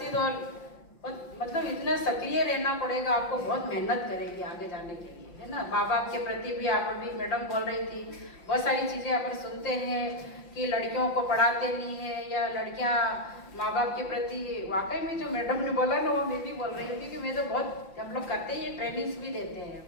और मतलब इतना सक्रिय रहना पड़ेगा आपको। बहुत मेहनत करेगी आगे जाने के लिए, है ना। माँ बाप के प्रति भी आप अभी मैडम बोल रही थी, बहुत सारी चीज़ें अपन सुनते हैं कि लड़कियों को पढ़ाते नहीं है या लड़कियाँ माँ बाप के प्रति। वाकई में जो मैडम ने बोला ना, वो मैं भी बोल रही हूँ, क्योंकि मैं तो बहुत हम लोग करते हैं, ये ट्रेनिंग्स भी देते हैं।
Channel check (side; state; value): right; late; 5.8 ms